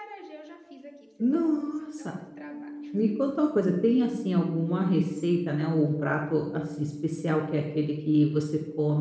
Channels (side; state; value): both; identical; correlation 1.00